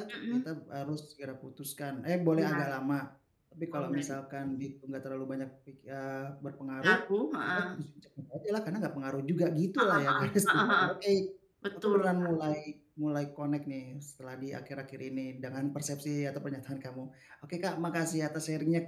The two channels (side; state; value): both; identical; correlation 1.00